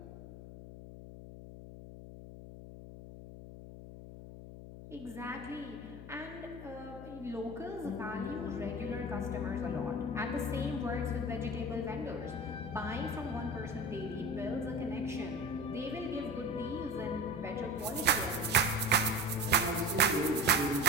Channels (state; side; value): noise; left; hum, 12 dB below the sound